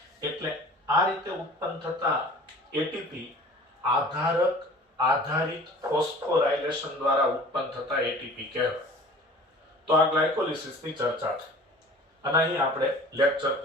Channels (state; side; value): normal; both; correlation 0.44